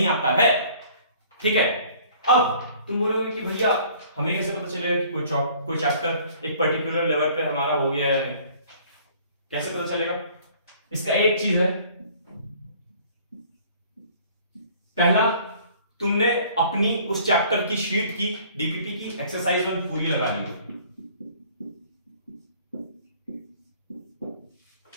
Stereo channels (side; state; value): both; inverted; correlation -0.54